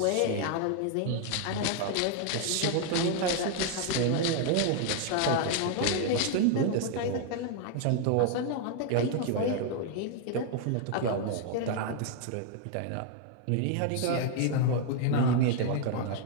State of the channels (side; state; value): both; different; correlation 0.00